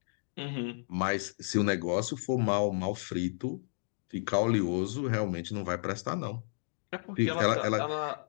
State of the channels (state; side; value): silent; right; digital silence